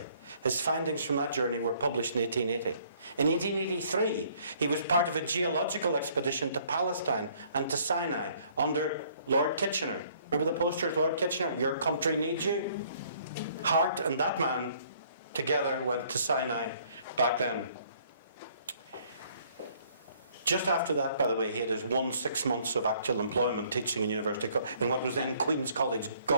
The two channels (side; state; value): both; inverted; correlation -0.61